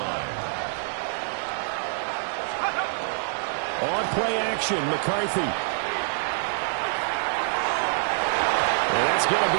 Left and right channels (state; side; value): silent; left; digital silence